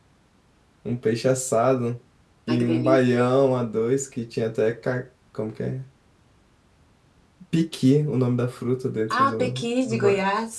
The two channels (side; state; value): both; identical; correlation 1.00